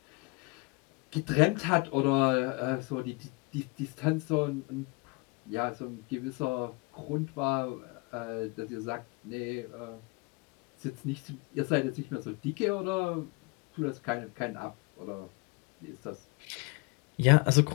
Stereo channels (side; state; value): right; quieter; 28.5 dB